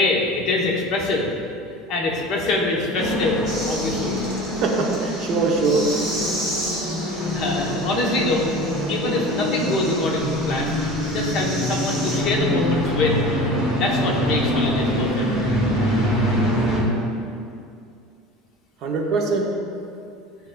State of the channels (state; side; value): normal; both; correlation 0.37